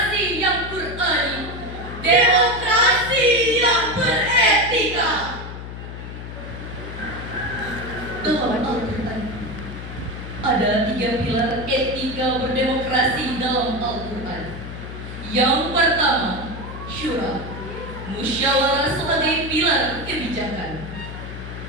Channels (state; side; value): noise; left; hum, 10 dB below the sound